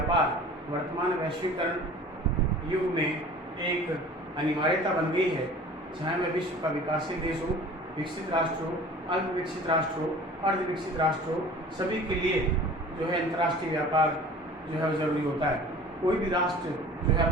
वर्तमान वैश्वीकरण युग में एक अनिवार्यता बन गई है, चाहे वह विश्व का विकासशील देश हो, विकसित राष्ट्र हो, अल्प विकसित राष्ट्र हो, अर्ध विकसित राष्ट्र हो, सभी के लिए जो है अंतर्राष्ट्रीय व्यापार जो है जरूरी होता है। कोई भी राष्ट्र जो है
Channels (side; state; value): both; normal; correlation 0.44